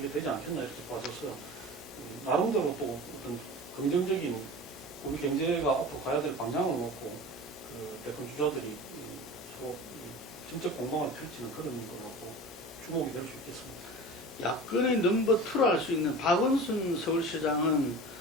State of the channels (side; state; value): both; normal; correlation 0.35